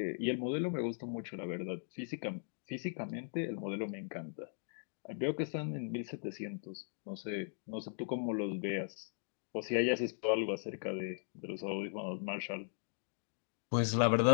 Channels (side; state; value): right; silent; digital silence